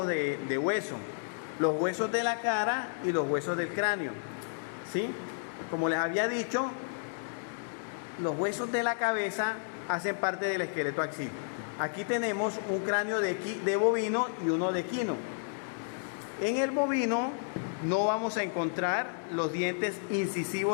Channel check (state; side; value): silent; right; digital silence